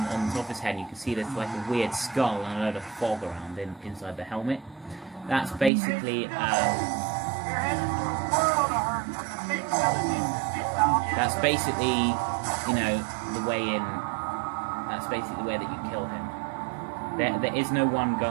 top of his head, and you can see there's like a weird skull and a load of fog around inside the helmet. That's basically, you know, the way in. That's basically the way that you kill him. There is no one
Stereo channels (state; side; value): drops out; left; at 5.7 s